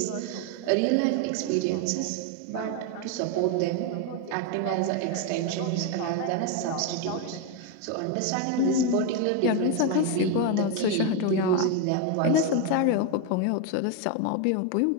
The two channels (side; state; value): both; different; correlation 0.02